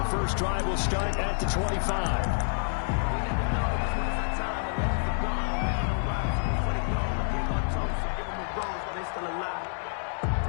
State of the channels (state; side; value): silent; right; digital silence